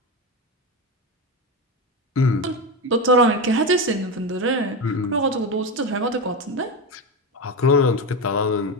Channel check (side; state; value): both; normal; correlation 0.16